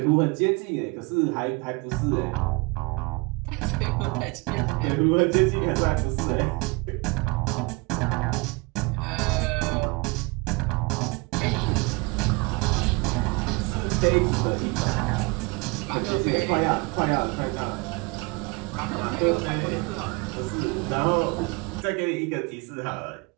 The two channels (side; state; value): left; quieter; 27.8 dB